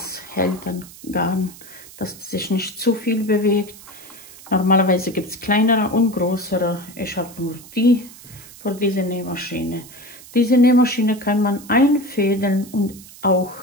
hält dann Garn, dass sich nicht zu viel bewegt. Normalerweise gibt es kleinere und größere. Ich habe nur die für diese Nähmaschine. Diese Nähmaschine kann man einfädeln und auch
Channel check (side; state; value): right; noise; hiss, 19 dB below the sound